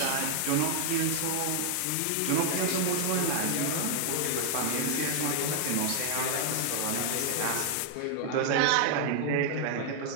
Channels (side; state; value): both; different; correlation 0.00